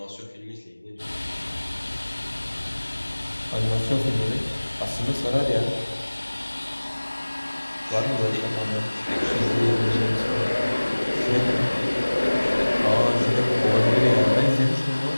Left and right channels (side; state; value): both; inverted; correlation -1.00